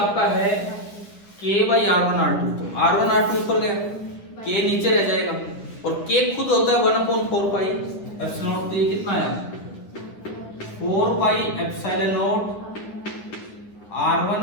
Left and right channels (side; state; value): right; late; 9.9 ms